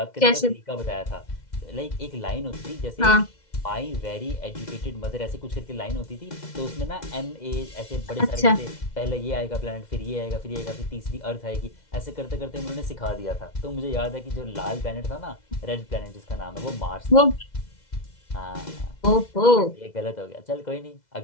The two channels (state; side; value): late; right; 2.0 ms